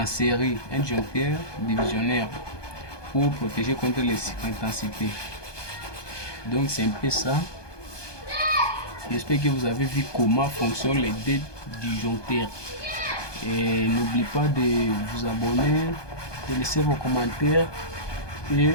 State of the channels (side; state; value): right; late; 1.2 ms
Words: série, un disjoncteur divisionnaire, pour protéger contre les intensités. Donc c'est un peu ça. J'espère que vous avez vu comment fonctionnent les deux disjoncteurs. Et n'oubliez pas de vous abonner, de laisser vos commentaires et